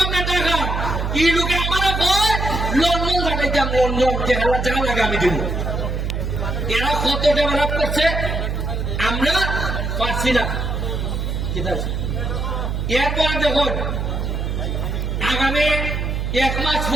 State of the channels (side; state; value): right; noise; hum, 2 dB below the sound